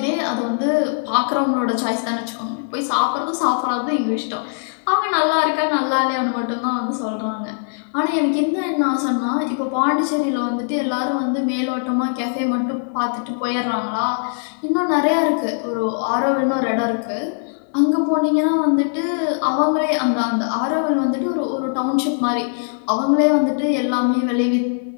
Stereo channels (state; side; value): silent; right; digital silence